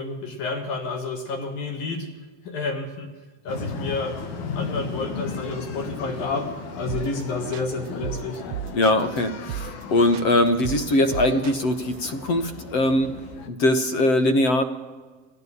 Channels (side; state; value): right; late; 7.8 ms